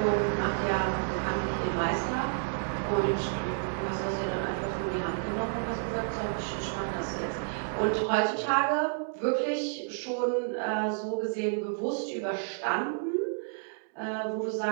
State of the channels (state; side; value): silent; left; digital silence